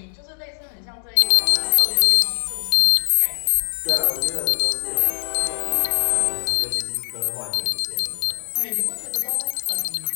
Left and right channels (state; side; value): silent; right; digital silence